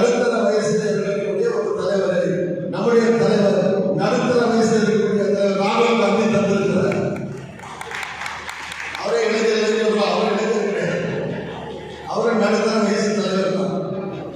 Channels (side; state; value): both; identical; correlation 1.00